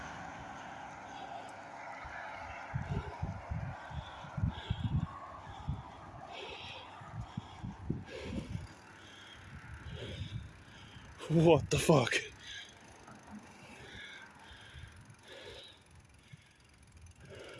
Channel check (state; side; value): identical; both; correlation 1.00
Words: What the fuck?